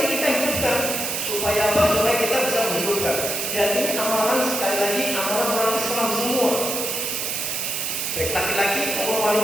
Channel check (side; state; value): right; noise; hiss, 2 dB below the sound